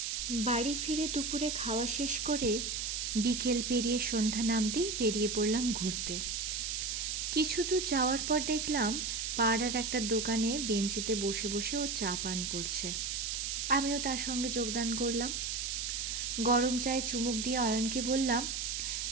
বাড়ি ফিরে দুপুরে খাওয়া শেষ করে বিকেল পেরিয়ে সন্ধ্যা নামতেই বেরিয়ে পড়লাম ঘুরতে। কিছু দূর যাওয়ার পর দেখলাম পাড়ার একটা দোকানে বেঞ্চিতে বসে বসে ও চা পান করছে। আমিও তার সঙ্গে যোগদান করলাম। গরম চায়ে চুমুক দিয়ে অয়নকে বললাম,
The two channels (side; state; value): right; noise; hiss, 2 dB below the sound